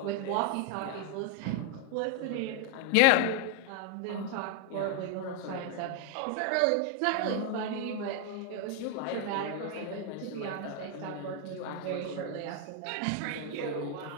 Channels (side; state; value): both; different; correlation 0.01